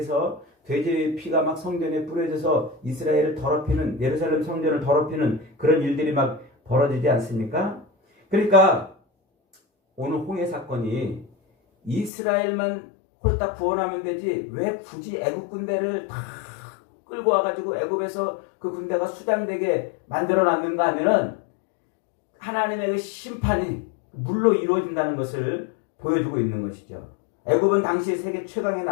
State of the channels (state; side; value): drops out; right; at 12.1 s